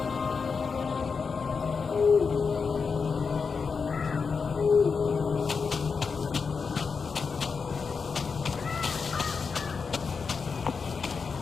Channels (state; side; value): quieter; right; 5.3 dB